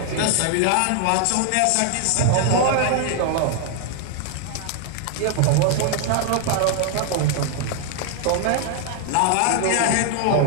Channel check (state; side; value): different; both; correlation 0.00